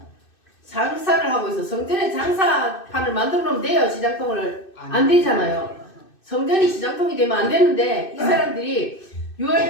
장사를 하고 있어. 성전에 장사판을 만들어 놓으면 돼요. 시장통을 안 되잖아요. 성전이 시장통이 되면 안 되는데 이 사람들이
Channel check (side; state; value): right; late; 2.6 ms